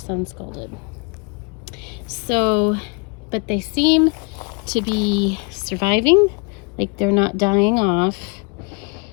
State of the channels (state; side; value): quieter; right; 32.4 dB